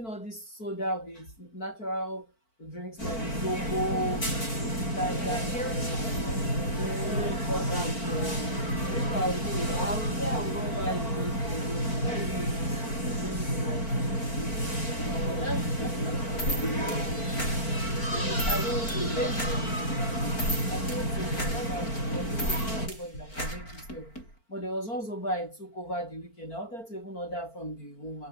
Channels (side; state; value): right; late; 4.4 ms